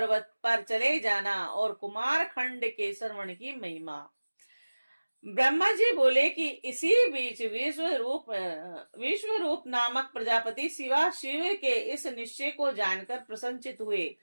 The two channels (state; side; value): inverted; both; correlation -1.00